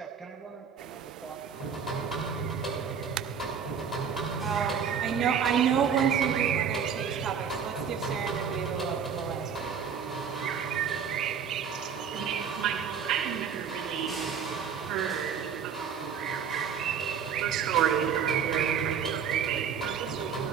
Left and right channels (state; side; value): quieter; left; 7.2 dB